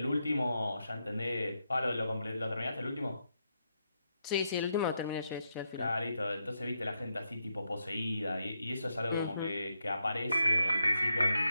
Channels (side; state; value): both; inverted; correlation -0.82